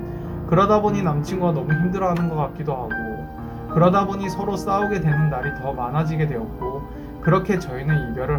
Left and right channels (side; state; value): both; identical; correlation 1.00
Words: 그러다 보니 남친구가 너무 힘들어하는 것 같기도 하고 그러다 보니 서로 싸우게 되는 날이 더 많아지게 되었고 그렇게 저희는